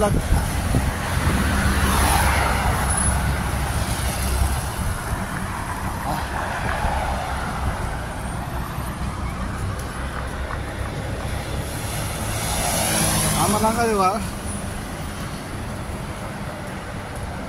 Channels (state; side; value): identical; both; correlation 1.00